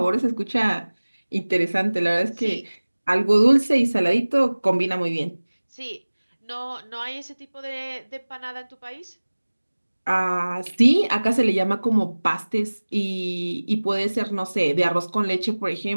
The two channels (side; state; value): both; inverted; correlation -1.00